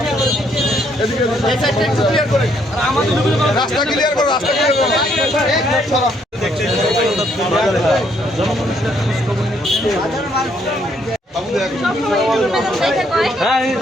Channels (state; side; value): normal; both; correlation 0.70